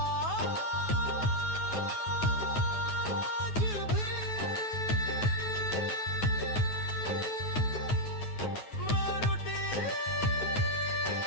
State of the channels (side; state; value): right; late; 9.3 ms